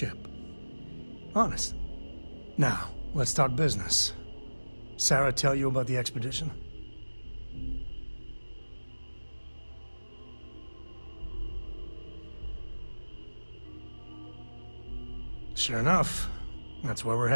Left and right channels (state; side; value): inverted; both; correlation -1.00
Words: Honest. Now, let's talk business. Sarah tell you about the expedition? Sure enough, that's where we're